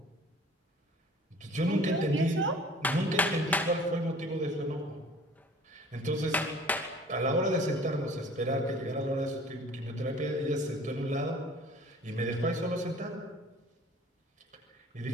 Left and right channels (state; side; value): normal; both; correlation 0.48